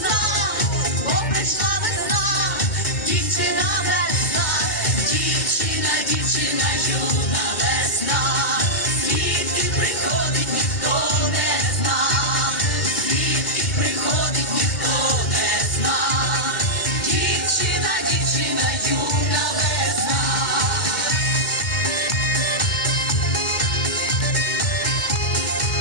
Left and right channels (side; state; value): right; late; 2.1 ms